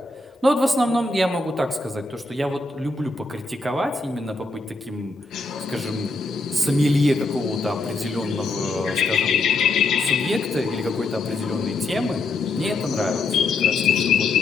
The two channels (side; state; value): right; quieter; 3.3 dB